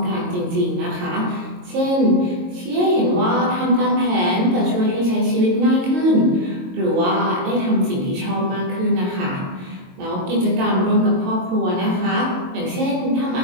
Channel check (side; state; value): left; late; 22 ms